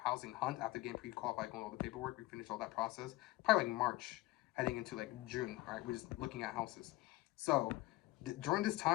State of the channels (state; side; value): quieter; right; 19.1 dB